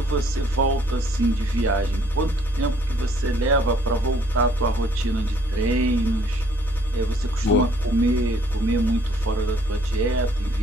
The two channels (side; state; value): both; normal; correlation 0.62